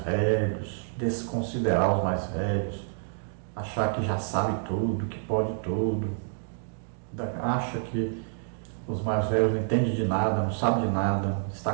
desconsiderar os mais velhos, achar que já sabe tudo, que pode tudo, acha que os mais velhos não entendem de nada, não sabem de nada. Está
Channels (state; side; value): silent; left; digital silence